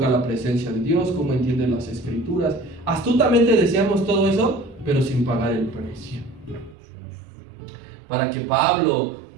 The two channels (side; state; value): left; drops out; at 6.8 s